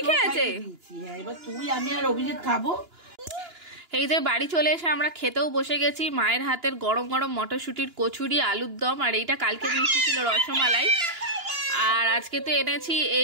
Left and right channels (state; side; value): late; left; 2.9 ms